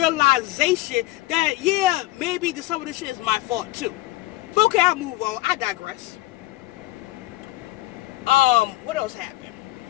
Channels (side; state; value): right; quieter; 18.2 dB